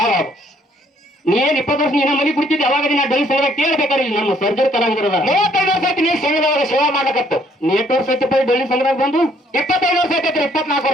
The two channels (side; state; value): both; normal; correlation 0.65